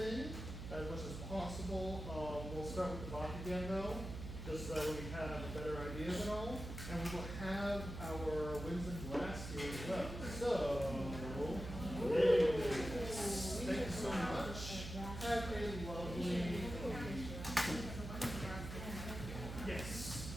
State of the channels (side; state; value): right; noise; hum, 7 dB below the sound